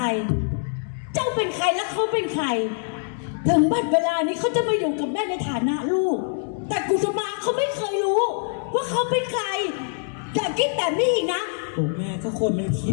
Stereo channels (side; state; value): right; silent; digital silence